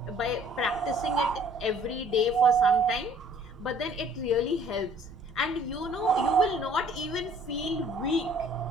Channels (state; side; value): normal; both; correlation 0.56